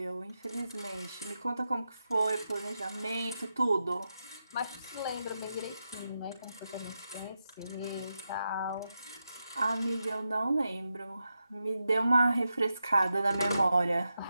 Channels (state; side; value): inverted; both; correlation -0.88